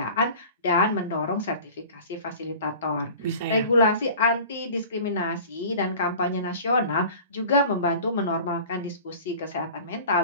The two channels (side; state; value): both; inverted; correlation -0.41